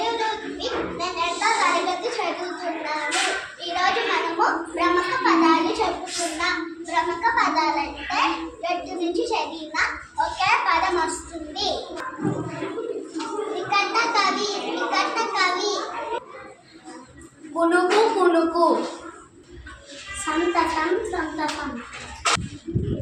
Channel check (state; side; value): identical; both; correlation 1.00